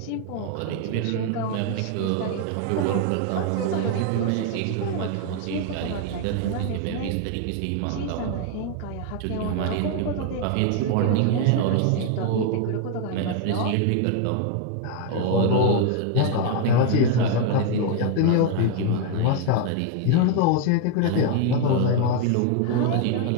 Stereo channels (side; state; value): both; different; correlation 0.01